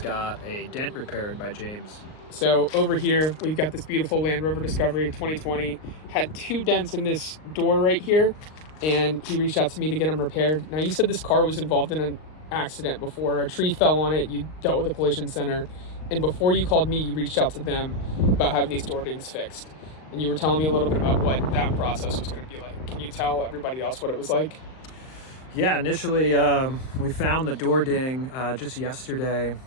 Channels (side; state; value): right; late; 38 ms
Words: got a dent repaired by James. So over here, we've got this beautiful Land Rover Discovery 2020. Had 2 dents in this door right here, and he reached out to me to get them repaired. Now, you said this car was involved in an accident before. A tree fell on it. You dealt with a collision center. And before you called me, you reached out to them about having these door dings fixed. And you were telling me a little bit about what that process was going to be like. Can you tell everybody else what it was like? Yeah, initially we found the door ding just yesterday,